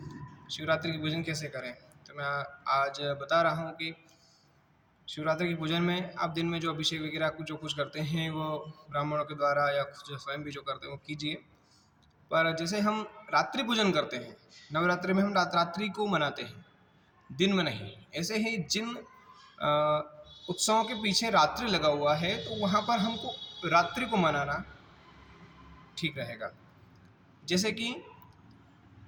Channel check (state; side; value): identical; both; correlation 1.00